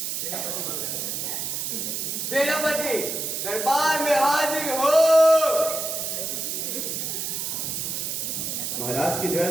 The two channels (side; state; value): right; noise; hiss, 2 dB below the sound